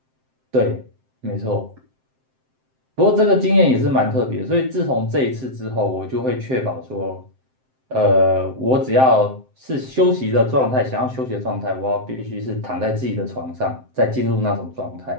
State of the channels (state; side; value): late; left; 7.7 ms